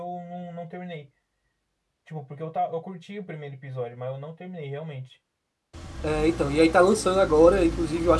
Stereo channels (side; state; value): both; identical; correlation 1.00